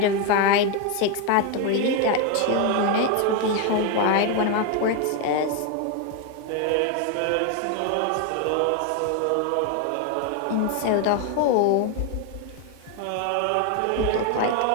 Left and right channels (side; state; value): both; different; correlation 0.01